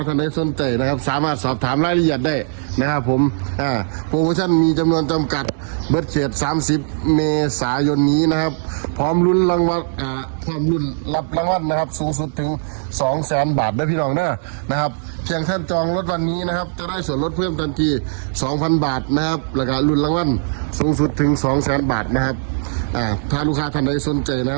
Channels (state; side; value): silent; left; digital silence